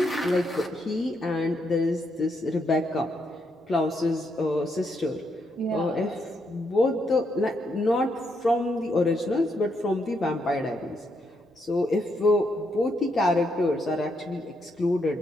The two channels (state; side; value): normal; both; correlation 0.78